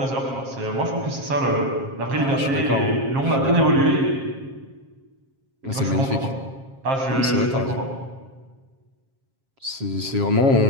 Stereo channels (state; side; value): late; left; 7.4 ms